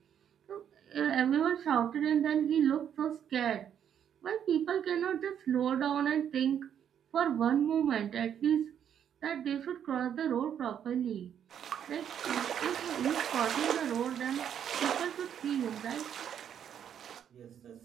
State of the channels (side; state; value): left; quieter; 9.0 dB